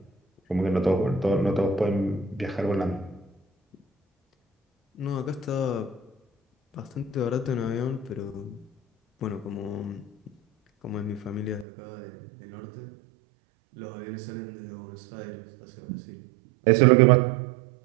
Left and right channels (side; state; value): left; drops out; at 11.7 s